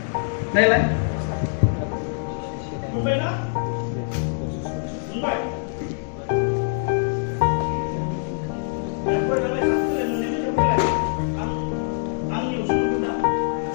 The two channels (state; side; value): silent; right; 63 dB below the other